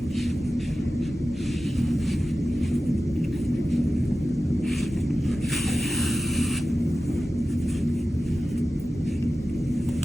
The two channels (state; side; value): normal; both; correlation 0.94